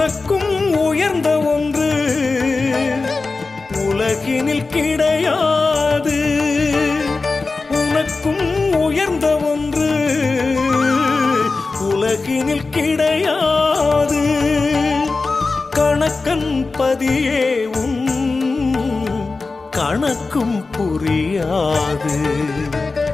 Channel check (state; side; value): quieter; right; 3.8 dB